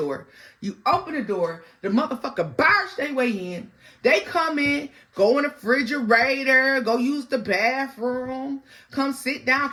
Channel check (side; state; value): both; identical; correlation 1.00